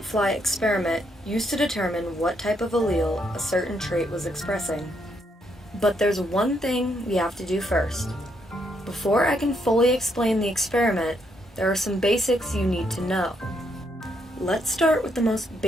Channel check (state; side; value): normal; both; correlation 0.75